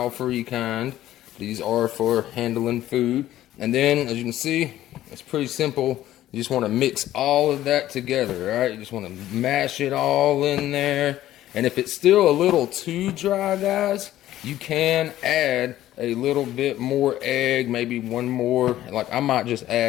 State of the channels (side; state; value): right; quieter; 13.7 dB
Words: kind. These are for handling food. And then, as you can see, it's pretty simple. You just want to mix all of that together, right? You just want to mash it all in there. And if it's still a little too dry, guys, you can add a little bit more egg, maybe 1 more. Like I might just